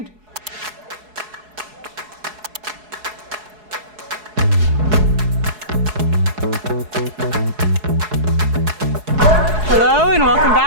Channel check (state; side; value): late; left; 4.7 ms